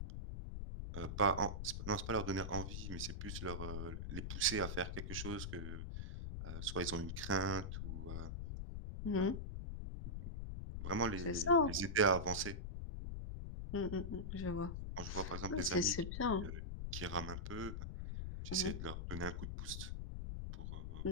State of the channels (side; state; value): left; noise; rumble, 5 dB below the sound